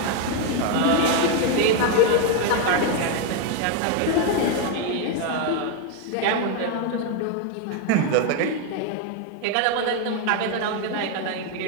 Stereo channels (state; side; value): different; both; correlation 0.01